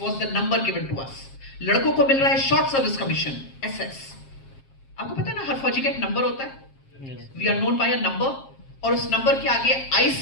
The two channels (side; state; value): right; late; 7.4 ms